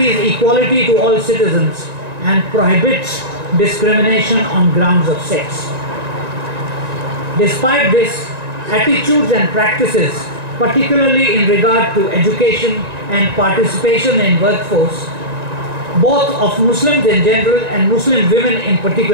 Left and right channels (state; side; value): late; left; 1.9 ms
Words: equality to all citizens and prohibits discrimination on grounds of sex. Despite this, attitudes and practices, particularly in regard to education and participation in workforce, both of Muslims in general and Muslim women in